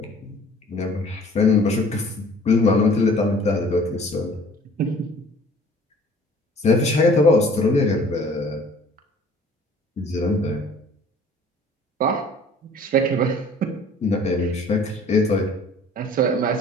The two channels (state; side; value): normal; both; correlation 0.51